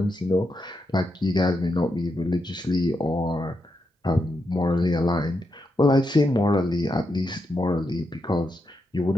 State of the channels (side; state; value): both; normal; correlation 0.84